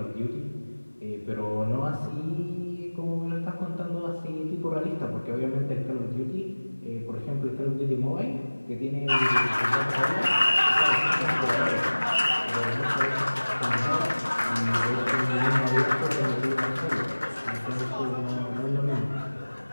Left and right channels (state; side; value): inverted; both; correlation -1.00